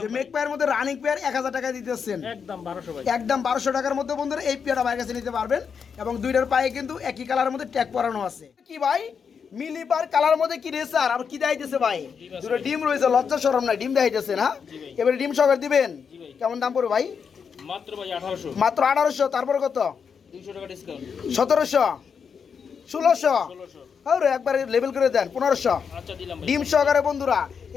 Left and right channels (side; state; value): right; quieter; 6.5 dB